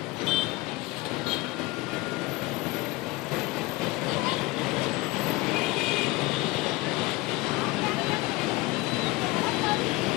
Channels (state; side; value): quieter; right; 21.4 dB